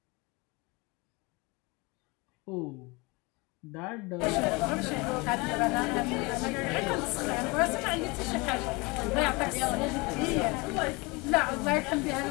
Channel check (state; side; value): quieter; right; 26.1 dB